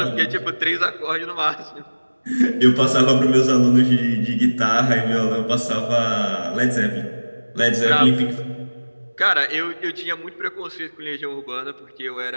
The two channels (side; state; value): both; inverted; correlation -1.00